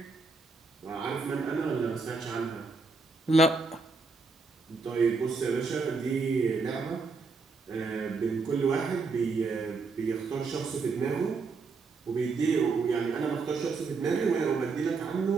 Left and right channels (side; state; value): left; quieter; 4.3 dB